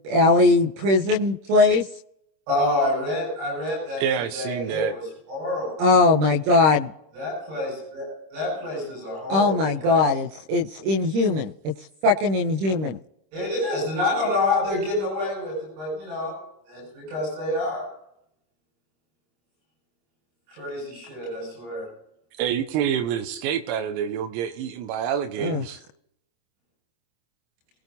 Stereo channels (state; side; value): late; left; 26 ms